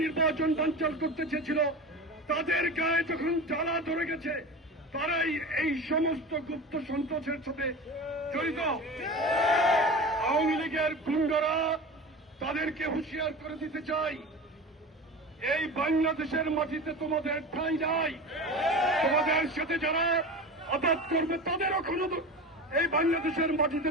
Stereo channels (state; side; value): normal; both; correlation 0.31